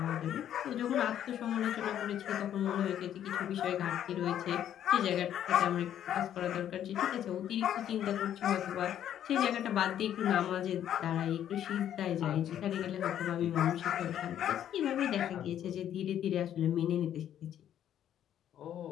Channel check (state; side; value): quieter; right; 10.5 dB